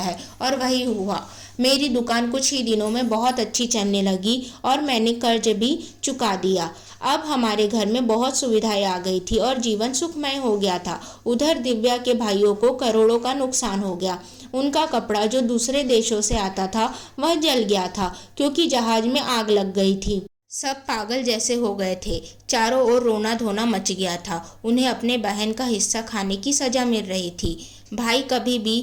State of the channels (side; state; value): both; identical; correlation 1.00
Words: और वही हुआ, मेरी दुकान कुछ ही दिनों में बहुत अच्छी चलने लगी और मैंने कर्ज भी चुका दिया। अब हमारे घर में बहुत सुविधाएं आ गई थी और जीवन सुखमय हो गया था। उधर दिव्या के भाइयों को करोड़ों का नुकसान हो गया। उनका कपड़ा जो दूसरे देशों से आता था वह जल गया था क्योंकि जहाज में आग लग गई थी। सब पागल जैसे हो गए थे, चारों ओर रोना धोना मच गया था। उन्हें अपने बहन का हिस्सा खाने की सजा मिल रही थी। भाई कभी भी